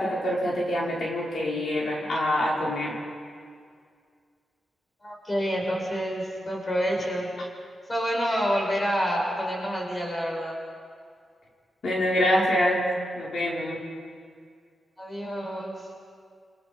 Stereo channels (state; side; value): normal; both; correlation 0.85